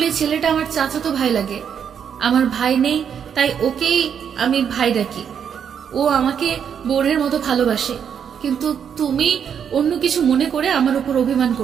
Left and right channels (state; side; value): quieter; left; 7.9 dB